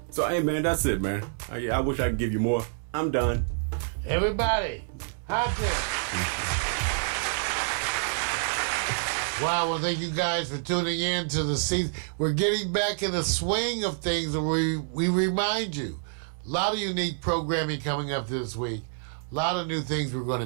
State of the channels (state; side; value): silent; left; digital silence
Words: So hey man, that's it, man. I wish I could give you more. I'm done. Everybody, hot there. Wow, well, thank you guys for tuning in to the season. We're getting back in the swing of things, and we remind you, a lot of unique programming coming up this week, a lot of new things we're going